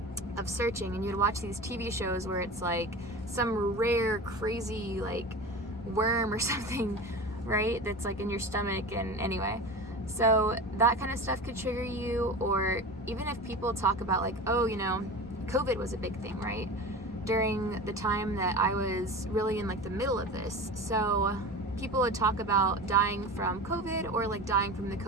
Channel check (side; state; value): both; normal; correlation 0.31